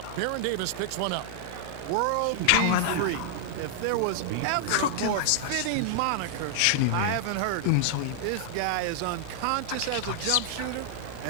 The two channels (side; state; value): both; different; correlation -0.01